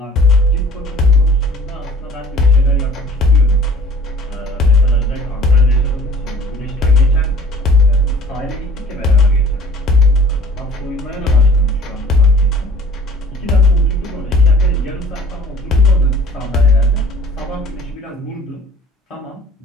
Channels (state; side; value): normal; both; correlation 0.49